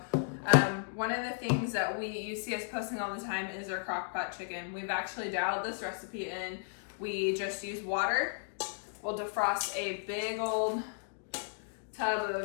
one of the things that you see us posting all the time is our crock pot chicken. We've actually dialed this recipe in. We just use water. We'll defrost a big old tub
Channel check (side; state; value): right; silent; digital silence